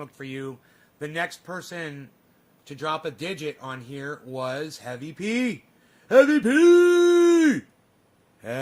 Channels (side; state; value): both; identical; correlation 1.00